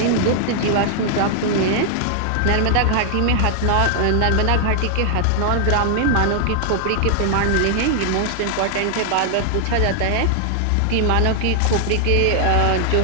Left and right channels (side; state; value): both; different; correlation 0.00